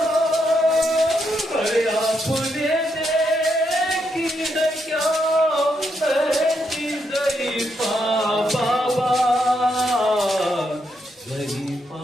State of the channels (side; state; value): both; normal; correlation 0.79